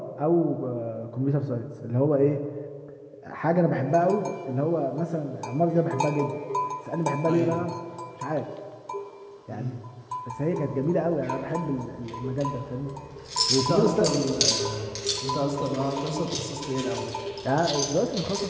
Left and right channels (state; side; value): identical; both; correlation 1.00